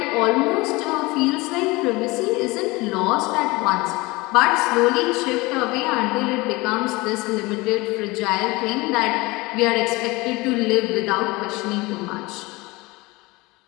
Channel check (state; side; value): quieter; right; 22.9 dB